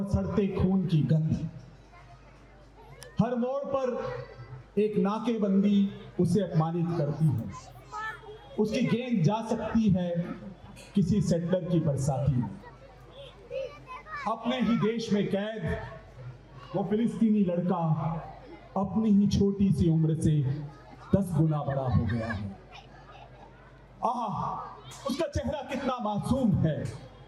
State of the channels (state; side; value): identical; both; correlation 1.00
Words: सड़ते खून की गंध। हर मोड़ पर एक नाकेबंदी उसे अपमानित करती है। उसकी गेंद जा सकती है किसी सेटलर की बरसाती में। अपने ही देश में कैद वो फिलिस्तीनी लड़का अपनी ही छोटी सी उम्र से 10 गुना बड़ा हो गया है। उसका चेहरा कितना मासूम है,